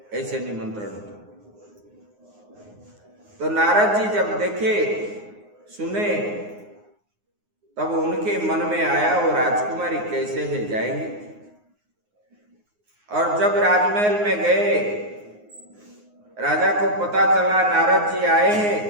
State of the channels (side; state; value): left; late; 9.6 ms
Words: ऐसे निमंत्रण था। तो नारद जी जब देखे सुने तब उनके मन में आया वो राजकुमारी कैसे है, जाएंगे। और जब राजमहल में गए, राजा को पता चला नारद जी आए हैं,